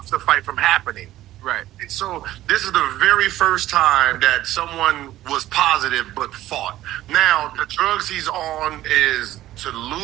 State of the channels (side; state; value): left; quieter; 14.7 dB